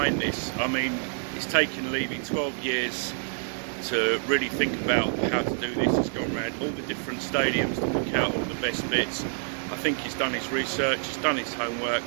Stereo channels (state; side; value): silent; left; 58 dB below the other